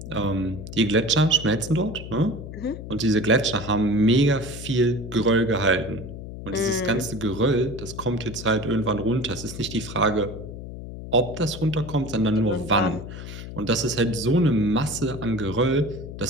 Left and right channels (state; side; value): noise; left; hum, 10 dB below the sound